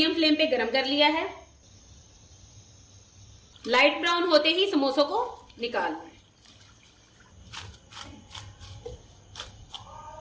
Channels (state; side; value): identical; both; correlation 1.00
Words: फ्लेम पे गरम कर लिया है। लाइट ब्राउन होते ही समोसों को निकाल लें।